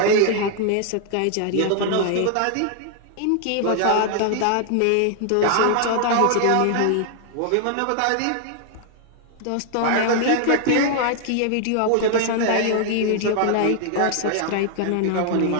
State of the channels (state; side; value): different; both; correlation 0.00